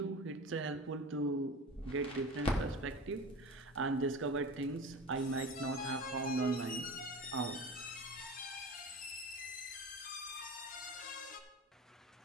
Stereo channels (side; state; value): both; normal; correlation 0.33